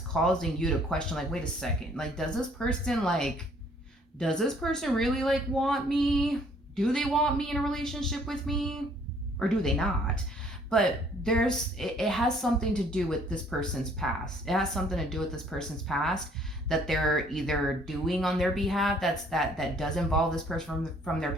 you to question like, wait a second, like, does this person really like want me? Do they want me in a relationship with me, or do they not? But it has something to do with this person's past. It has something to do with this person's past that they're either doing on their behalf that does involve this person from their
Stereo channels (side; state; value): both; normal; correlation 0.61